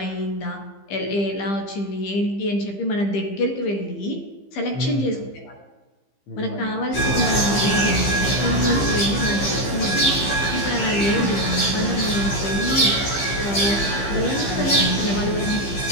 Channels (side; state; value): right; late; 15 ms